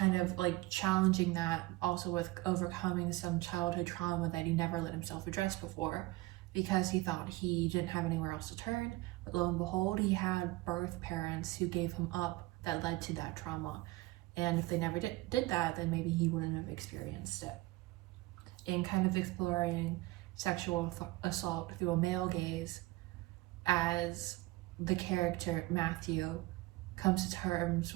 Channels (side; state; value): left; quieter; 19.9 dB